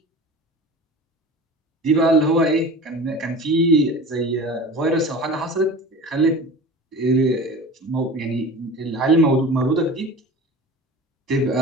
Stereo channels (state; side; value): normal; both; correlation 0.36